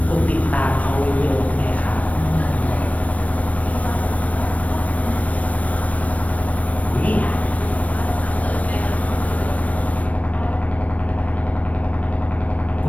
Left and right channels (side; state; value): right; late; 0.068 ms